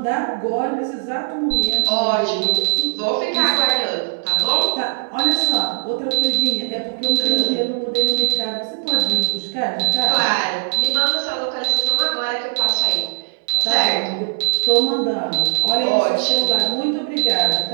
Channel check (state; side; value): silent; left; digital silence